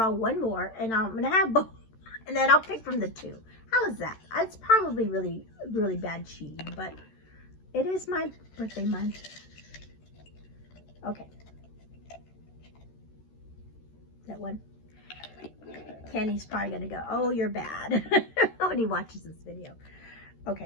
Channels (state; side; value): late; right; 13 ms